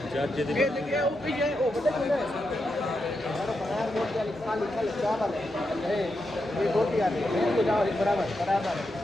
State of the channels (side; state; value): both; normal; correlation 0.85